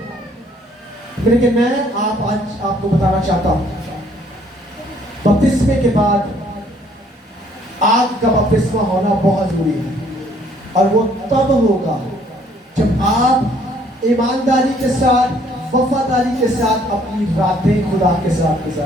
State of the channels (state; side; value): normal; both; correlation 0.62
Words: لیکن میں آج آپ کو بتانا چاہتا ہوں بپتسمے کے بعد آگ کا بپتسمہ ہونا بہت ضروری ہے. اور وہ تب ہوگا جب آپ ایمانداری کے ساتھ, وفاداری کے ساتھ اپنی راتیں خدا کے ساتھ